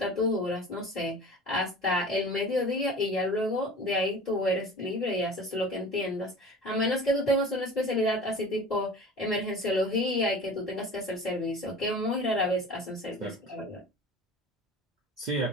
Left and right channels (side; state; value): both; normal; correlation 0.39